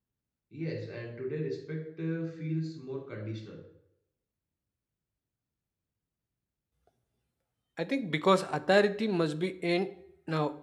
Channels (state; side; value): identical; both; correlation 1.00